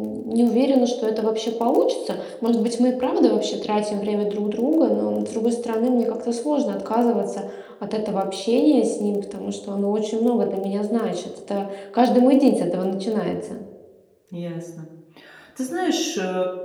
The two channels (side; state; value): both; identical; correlation 1.00